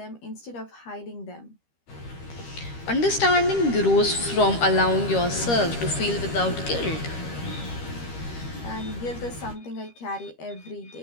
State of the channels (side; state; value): right; late; 13 ms